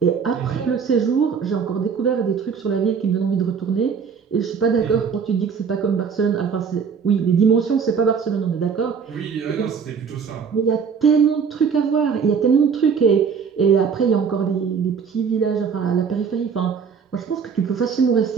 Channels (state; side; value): quieter; left; 6.3 dB